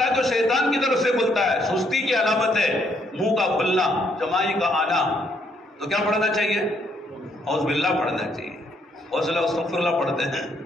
ہے تو شیطان کی طرف سے کھلتا ہے، سستی کی علامت ہے منہ کا کھلنا، جمائی کا آنا، تو کیا پڑھنا چاہیے؟ اعوذ باللہ پڑھنا چاہیے۔ اور صلی اللہ استغفر اللہ پڑھتے ہیں۔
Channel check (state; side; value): normal; both; correlation 0.71